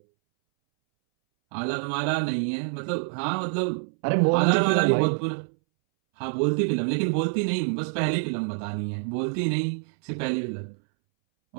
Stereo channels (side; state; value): left; silent; 61 dB below the other